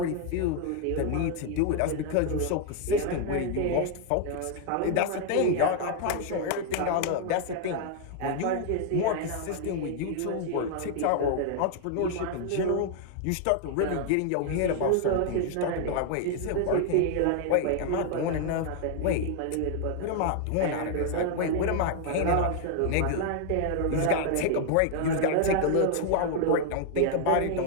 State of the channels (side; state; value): both; different; correlation 0.00